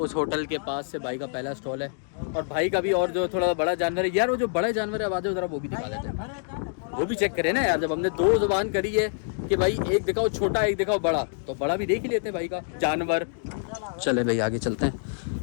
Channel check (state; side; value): silent; right; digital silence